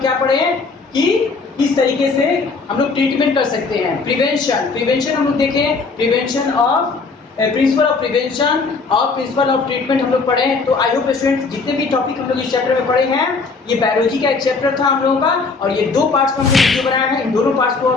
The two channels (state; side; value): quieter; right; 4.3 dB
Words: क्या पढ़े हैं कि इस तरीके से हम लोग ट्रीटमेंट कर सकते हैं। प्रिवेंशन हम लोग देखें, prevention of principle of prevention और प्रिंसिपल ऑफ ट्रीटमेंट हम लोग पढ़े हैं। तो आई होप स्टूडेंट्स जितने भी टॉपिक हम लोग इस चैप्टर में पढ़े हैं, ये बायोलॉजी का एक चैप्टर था हम लोगों का और ये 2 पार्ट्स का हमने वीडियो बनाया है। इन दोनों पार्ट्स को